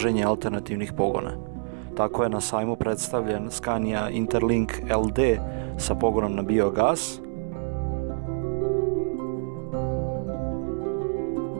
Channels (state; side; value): silent; left; digital silence